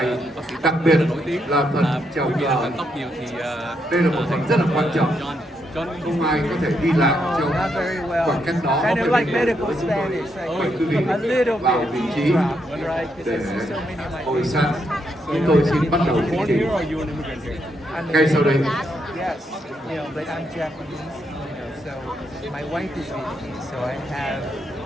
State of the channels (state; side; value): normal; both; correlation 0.79